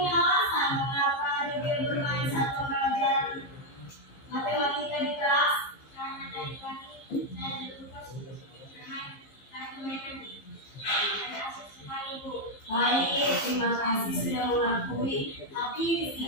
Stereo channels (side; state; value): right; late; 15 ms